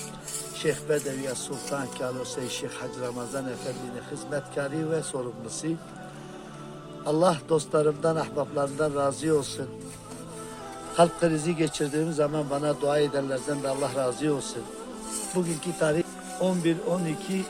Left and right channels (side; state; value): both; identical; correlation 1.00